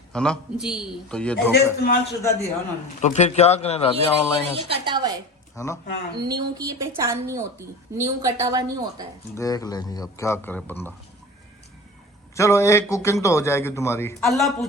ना जी। तो ये ऐसे धोखा। इस्तेमाल शुदा दिया उन्होंने। तो फिर क्या करें ये राबिया ऑनलाइन ये कटा हुआ है ना? हाँ। न्यू की ये पहचान नहीं होती, न्यू कटा हुआ नहीं होता है। देख लेंगे अब क्या करे बंदा। चलो 1 कुकिंग तो हो जाएगी तुम्हारी। अल्लाह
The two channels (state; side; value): normal; both; correlation 0.36